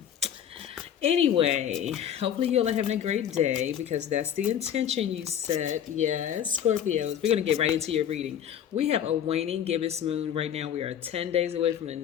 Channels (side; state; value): right; quieter; 9.5 dB